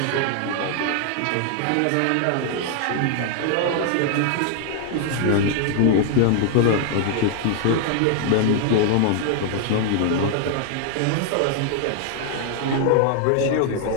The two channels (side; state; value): both; different; correlation 0.00